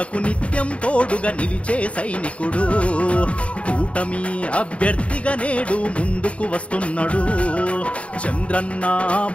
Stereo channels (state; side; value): late; right; 0.063 ms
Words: నిత్యం తోడుగా నిలిచే సైనికుడు, కూటమి అభ్యర్థిగా నేడు ముందుకు వస్తున్నాడు. చంద్రన్న